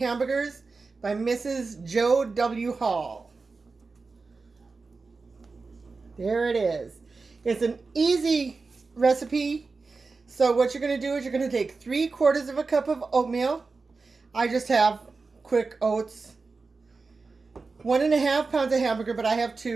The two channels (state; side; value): quieter; left; 4.2 dB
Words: by Mrs. Joe W. Hall. There it is. It's an easy recipe. So what you're going to do is you're going to take 3/4 of a cup of oatmeal. I just have quick oats. 1.5 pounds of hamburger, but I have